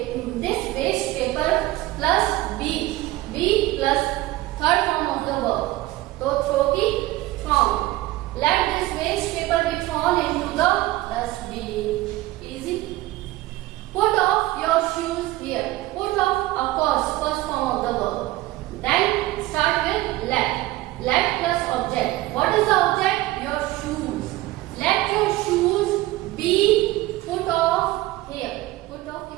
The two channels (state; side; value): quieter; left; 17.6 dB